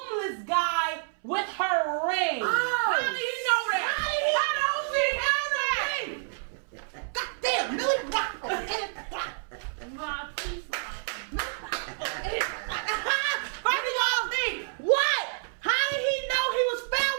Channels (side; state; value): left; silent; 59 dB below the other